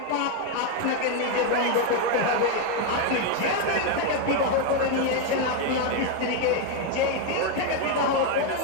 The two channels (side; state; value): both; different; correlation 0.01